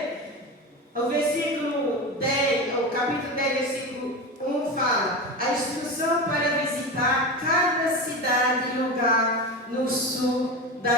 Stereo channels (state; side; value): normal; both; correlation 0.23